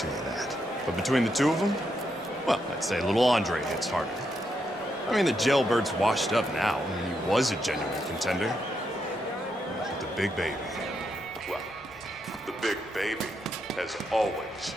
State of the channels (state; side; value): normal; both; correlation 0.81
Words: you that. But between the two of them, well, I'd say little Andre hits harder. I mean, the jailbird's washed up now. I mean, he was a genuine contender. But the big baby, well, the big baby has always